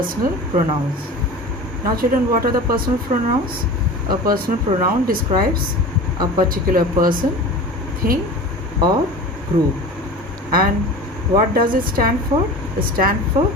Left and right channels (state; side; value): normal; both; correlation 0.35